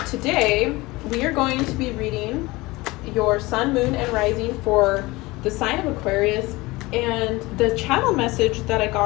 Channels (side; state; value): right; quieter; 21.5 dB